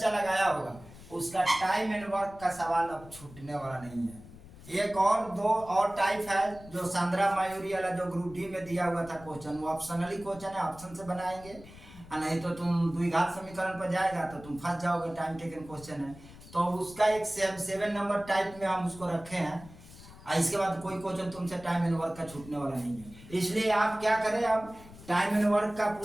लगाया होगा, उसका टाइम एंड वर्क का सवाल अब छूटने वाला नहीं है। एक और दो और टाइप है जो सांद्रा मायूरी वाला जो ग्रुप डी में दिया हुआ था क्वेश्चन, वो ऑप्शनली क्वेश्चन है, ऑप्शन से बनाएंगे, नहीं तो तुम द्विघात समीकरण पर जाएगा तो तुम फंस जाओगे, टाइम टेकन क्वेश्चन है। तो उसका एक 7 नंबर टाइप में हम उसको रखे हैं। इसके बाद कोई क्वेश्चन तुमसे टाइम एंड वर्क का छूटने वाला नहीं है। इसलिए आप क्या करें, अब टाइम एंड वर्क का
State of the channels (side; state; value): left; noise; rumble, 19 dB below the sound